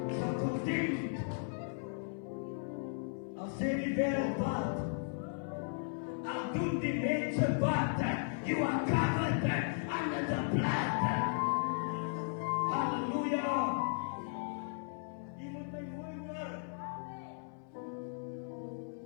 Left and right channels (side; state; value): right; silent; 54 dB below the other